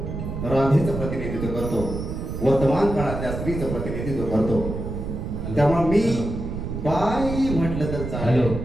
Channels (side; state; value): right; noise; rumble, 5 dB below the sound